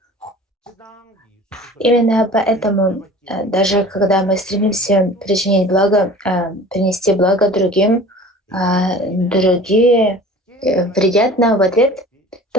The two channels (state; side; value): normal; both; correlation 0.43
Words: Именно поэтому, даже когда мы стремимся причинить благо, принести благо другим, другие вредят нам в ответ,